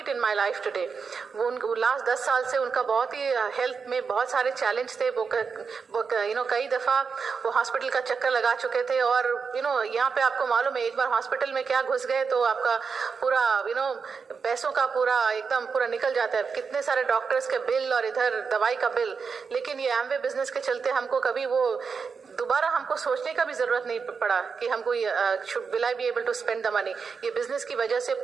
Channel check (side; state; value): left; quieter; 5.5 dB